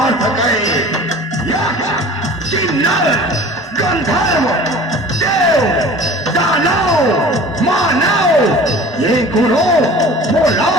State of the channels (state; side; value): normal; both; correlation 0.43